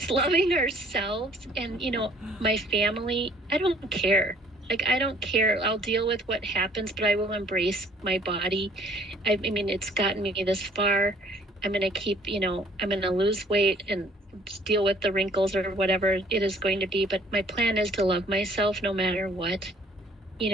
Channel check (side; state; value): both; normal; correlation 0.58